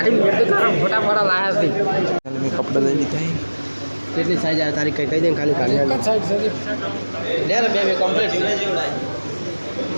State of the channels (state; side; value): inverted; both; correlation -1.00